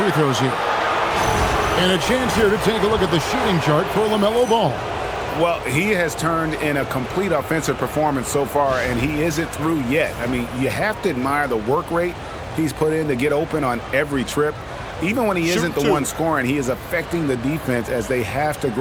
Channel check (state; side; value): identical; both; correlation 1.00